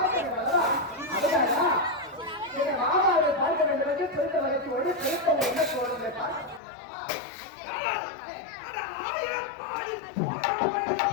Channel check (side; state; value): right; drops out; at 6.6 s